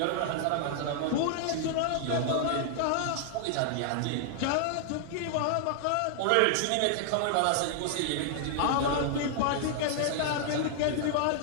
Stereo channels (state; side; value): different; both; correlation -0.01